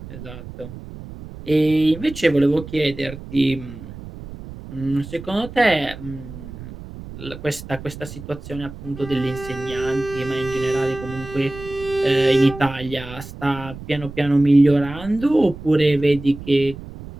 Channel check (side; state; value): right; noise; rumble, 13 dB below the sound